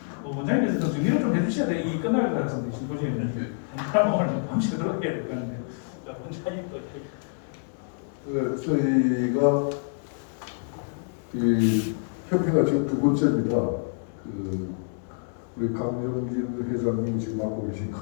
원장님께서 좀 정리를 좀 해주셔야 돼. 이 끝날 것 같습니다. 심포지엄은 그럼 오늘 밤새도록 해야 될 것 같은데 원장님 저희가 이 협회가 지금 두 번째입니다. 우리 강정진 회장님이 지금 맡고 계신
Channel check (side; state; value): right; silent; digital silence